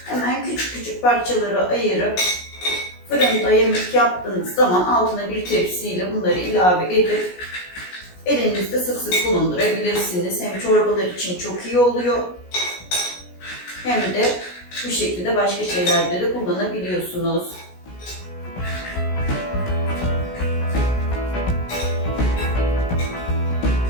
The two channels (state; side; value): late; right; 17 ms